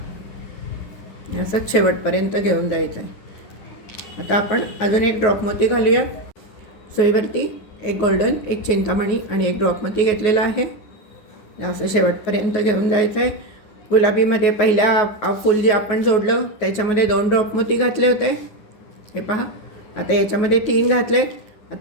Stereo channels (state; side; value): late; right; 9.4 ms